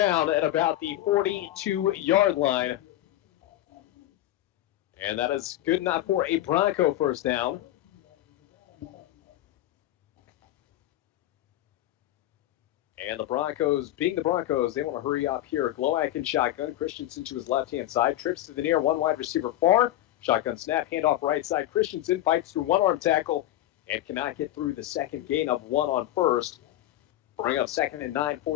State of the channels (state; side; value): quieter; right; 14.2 dB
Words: at about the 42-yard line. And that is good enough for a Bronco first down. And the Broncos, being the Broncos, they want to hurry up here. Glowacke in shotgun. Christensen to his left-hand side. Trips to the near. One wide receiver far. Shotgun snap. Handoff right side. Christensen fights through one arm tackle and cannot get through the second gain of 1 on first. Bring up 2nd and 9